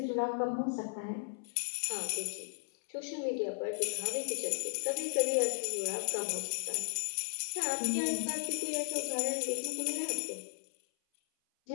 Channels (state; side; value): silent; right; 54 dB below the other